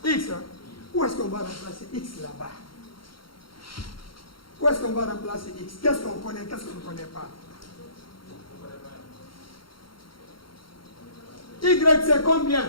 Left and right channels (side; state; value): right; late; 0.73 ms